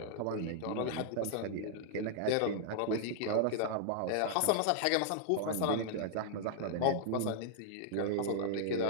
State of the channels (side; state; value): both; different; correlation -0.01